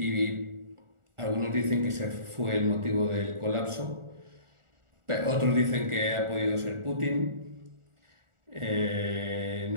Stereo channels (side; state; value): left; late; 1.4 ms